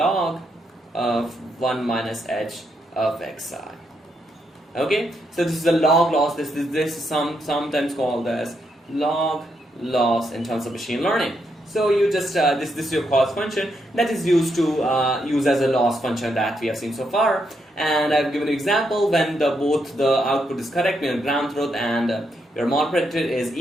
of 1 minus h of xi. Okay, so this is a log loss. This is sometimes called as log loss in terms of machine learning. So you just this is your cost function that is used to use as a loss function that we have seen so far. And I've given an example when both the output is correct, your ground truth and your mod predictor is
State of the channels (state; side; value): normal; both; correlation 0.79